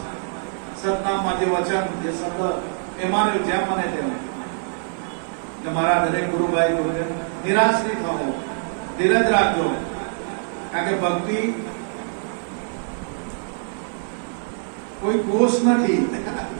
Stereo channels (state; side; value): silent; left; 63 dB below the other